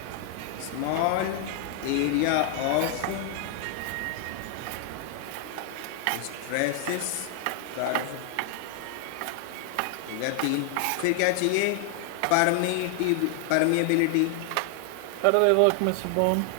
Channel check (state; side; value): different; both; correlation 0.00